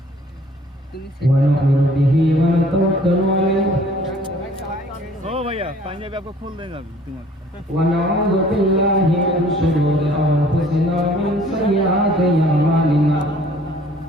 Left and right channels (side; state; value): both; normal; correlation 0.55